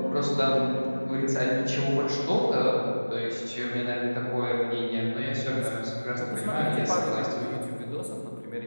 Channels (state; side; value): inverted; both; correlation -1.00